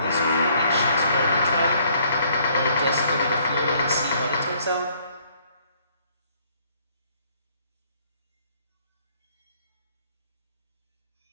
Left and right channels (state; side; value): inverted; both; correlation -0.63